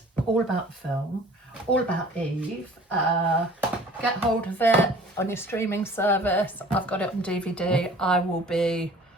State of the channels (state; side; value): normal; both; correlation 0.48